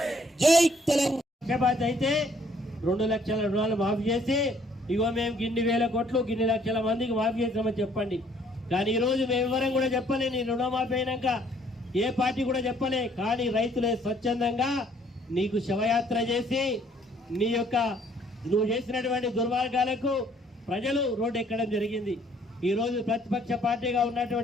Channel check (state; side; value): normal; both; correlation 0.62